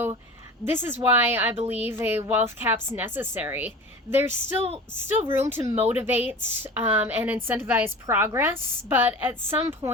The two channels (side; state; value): both; normal; correlation 0.36